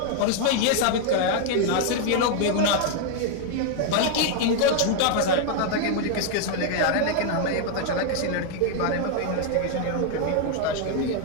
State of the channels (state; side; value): different; both; correlation 0.00